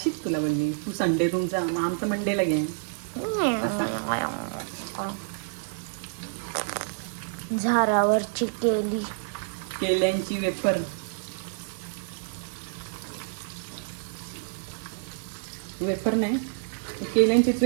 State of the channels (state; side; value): silent; left; 59 dB below the other